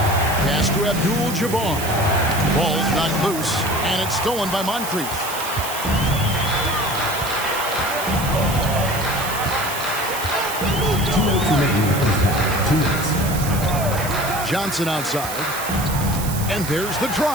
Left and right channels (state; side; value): noise; right; hiss, 8 dB below the sound